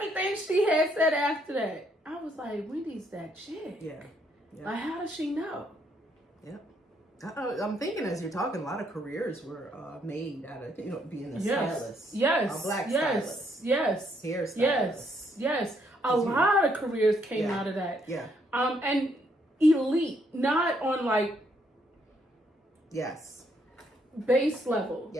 she had said after that, I was like, Wendy's that chick. Yeah. Like, how does she know? Yeah. I'm thinking as you're talking, a lot of careers were made out of, you know, being a stylist. Yes. A black stylist. Yes. Hairstylist. Yes. A lot of careers came out of that. Yeah. And elite, not on like base level.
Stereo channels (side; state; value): both; normal; correlation 0.71